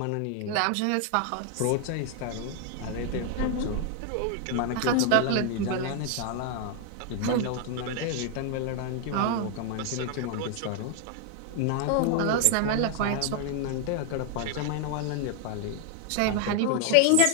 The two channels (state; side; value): different; both; correlation 0.00